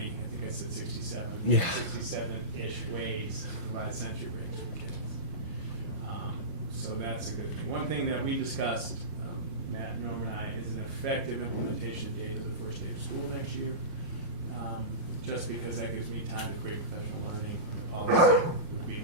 I think I said 67-ish ways to provide sensory breaks for kids. So that's a good thing. One thing that we discussed, Matt, Norm, and I, is an effective implementation date of the first day of school next year. Just because that gives me time to create professional learning, the policy would be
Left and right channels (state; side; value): late; right; 5.6 ms